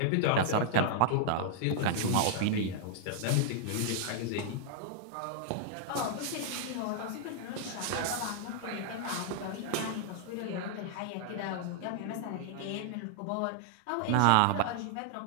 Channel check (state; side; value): different; both; correlation 0.00